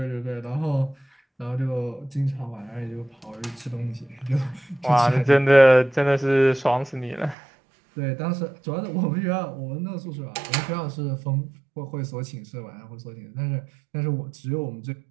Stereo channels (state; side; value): drops out; left; at 7.4 s